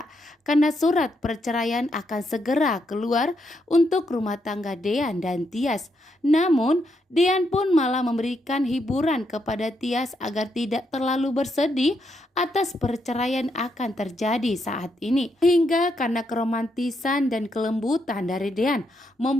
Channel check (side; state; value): both; normal; correlation 0.79